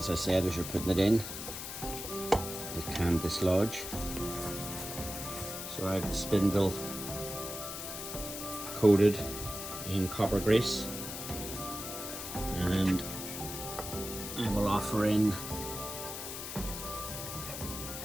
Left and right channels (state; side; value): noise; left; hiss, 7 dB below the sound